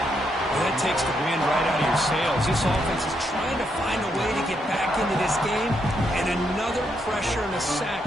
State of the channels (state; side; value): normal; both; correlation 0.78